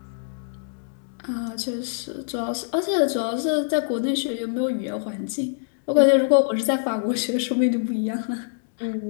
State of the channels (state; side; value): silent; right; digital silence